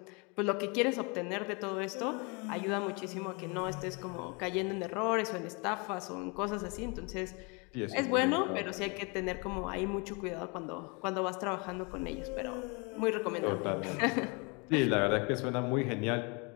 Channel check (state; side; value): quieter; right; 31.1 dB